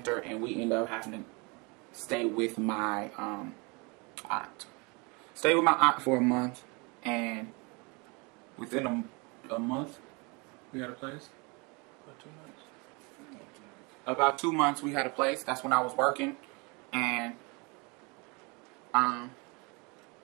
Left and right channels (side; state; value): left; quieter; 29.6 dB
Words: and we ended up having to stay with my aunt. Stayed with my aunt for a month, and within a month, we had a place. About 2 months, we had a place. That's when I was working, and